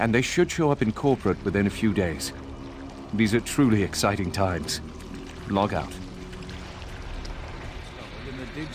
they should show up in corporate within a few days. These are truly exciting times. Log out. In the dig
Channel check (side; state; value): both; identical; correlation 1.00